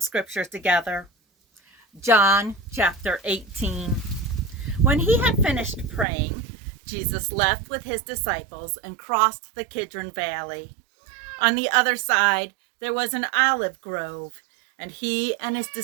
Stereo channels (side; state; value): left; drops out; at 6.1 s